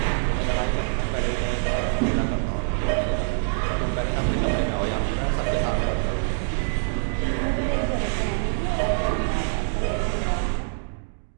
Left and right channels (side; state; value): left; silent; digital silence